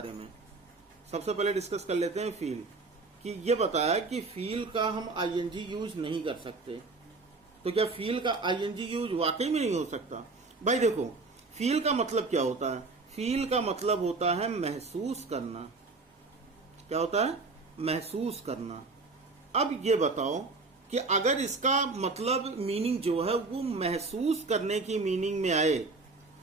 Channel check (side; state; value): left; quieter; 3.8 dB